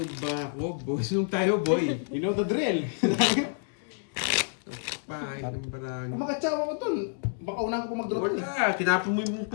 ba ako? Boy, sunog tayo, boy. You know the drill. Pahit ng barang. Makatsawa ko dun. Baka unahan ko mag-drop. Wala, tinapon mo yung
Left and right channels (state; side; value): silent; right; digital silence